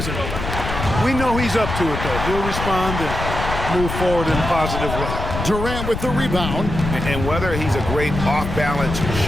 We know he's up to it, though. He'll respond and move forward in a positive way. Durant with the rebound. And whether he's a great off-balance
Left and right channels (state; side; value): noise; left; rumble, 5 dB below the sound